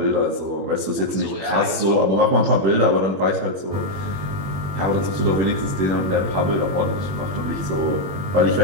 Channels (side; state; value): left; late; 21 ms